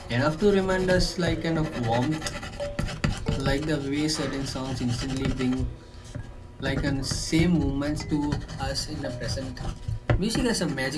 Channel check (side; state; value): both; identical; correlation 1.00